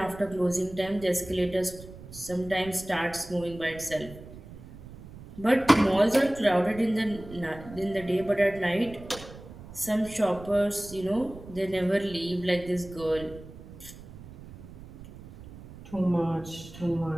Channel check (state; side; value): noise; right; rumble, 16 dB below the sound